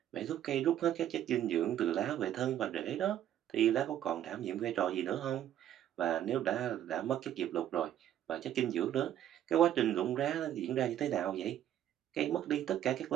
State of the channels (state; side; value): quieter; left; 11.3 dB